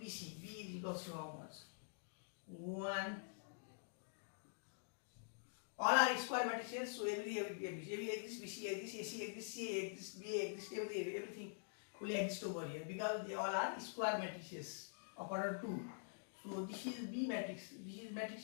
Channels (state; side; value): silent; right; digital silence